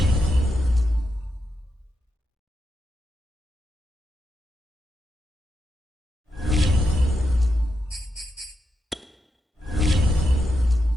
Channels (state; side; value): normal; both; correlation 0.85